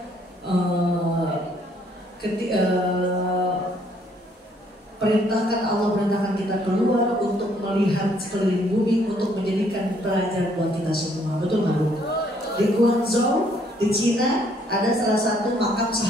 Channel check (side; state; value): both; normal; correlation 0.66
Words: Allah perintahkan kita keluar untuk melihat sekeliling bumi, untuk menjadikan pelajaran buat kita semua. Betul nggak Bu? Di Guangzhou, di Cina, ada salah satu makam